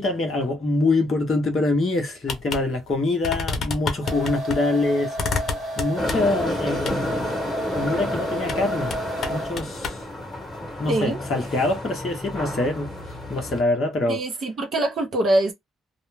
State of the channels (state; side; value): normal; both; correlation 0.71